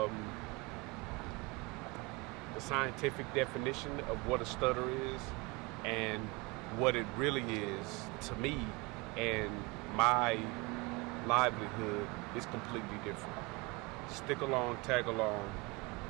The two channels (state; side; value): quieter; left; 24.9 dB